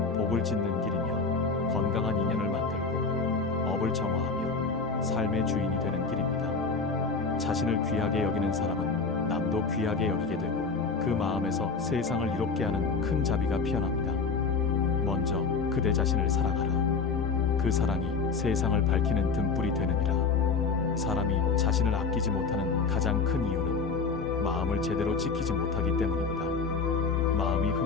복을 짓는 길이며 건강한 인연을 만들고 업을 정화하며 삶의 주인이 되는 길입니다. 자신을 귀하게 여기는 사람은 남도 귀하게 여기게 되고 그 마음에서 세상을 이롭게 하는 큰 자비가 피어납니다. 먼저 그대 자신을 사랑하라. 그 사랑이 세상을 밝히는 등불이 되느니라. 사람이 자신을 아끼지 못하는 가장 큰 이유는 마음을 제대로 지키지 못하기 때문입니다. 마음이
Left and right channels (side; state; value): right; quieter; 4.8 dB